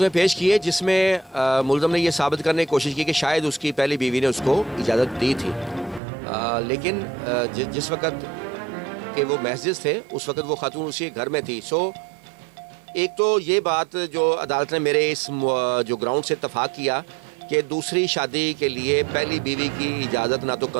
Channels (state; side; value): drops out; left; at 6.0 s